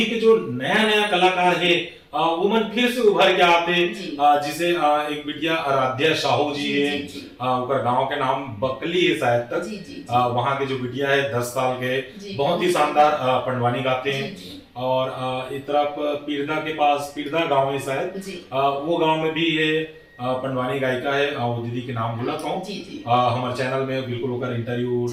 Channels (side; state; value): both; identical; correlation 1.00